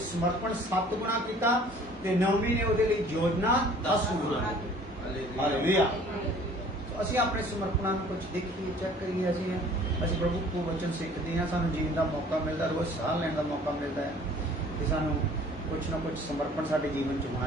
ਸਮਰਪਣ 7 ਗੁਣਾ ਕੀਤਾ ਤੇ ਨੌਵੀਂ ਨੇ ਉਹਦੇ ਲਈ ਯੋਜਨਾ 10 ਗੁਣਾ। ਹਾਲੇਲੂਇਆ। ਅਸੀਂ ਆਪਣੇ ਸਮਰਪਣਾਂ ਨੂੰ ਕੁਝ ਦੇਖੀਏ, ਚੈੱਕ ਕਰੀਏ। ਅਸੀਂ ਪ੍ਰਭੂ ਕੋ ਵਚਨ ਸਿੱਖਦੇ ਹਾਂ, ਸਾਨੂੰ ਜੀਣ ਦਾ ਮੌਕਾ ਮਿਲਦਾ, ਰੋਜ਼ ਸਾਹ ਲੈਣ ਦਾ ਮੌਕਾ ਮਿਲਦਾ ਹੈ ਤੇ ਸਾਨੂੰ ਕੁਛ ਨਾ ਕੁਛ ਸਮਰਪਣ ਸਾਡੇ ਜੀਵਨ 'ਚ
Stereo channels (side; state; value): both; normal; correlation 0.52